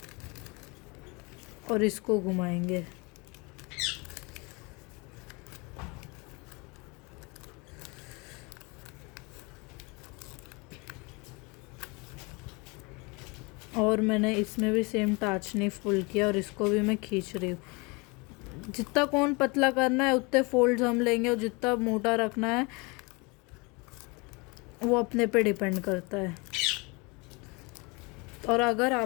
और इसको घुमाएंगे। और मैंने इसमें भी सेम टाचनी फुल किया और इसको भी मैं खींच रही हूँ। जितना कोन पतला करना है उतने फोल्ड्स हम लेंगे और जितना मोटा रखना है वो अपने पे डिपेंड करता है। और अगर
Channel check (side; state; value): right; quieter; 28.1 dB